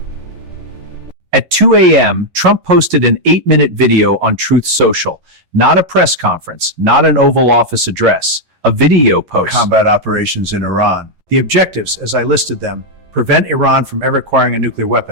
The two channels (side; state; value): left; late; 11 ms